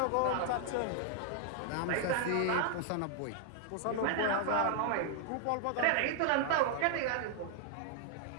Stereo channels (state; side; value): different; both; correlation 0.00